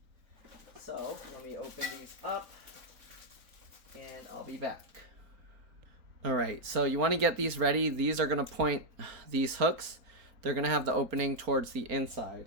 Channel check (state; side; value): late; left; 4.3 ms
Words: So let me open these up and I'll be back. All right, so you want to get these ready. These are going to point, these hooks, they're going to have the opening towards the